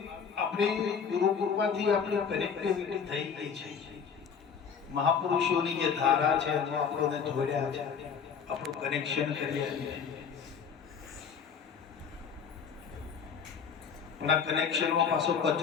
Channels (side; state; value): right; quieter; 6.6 dB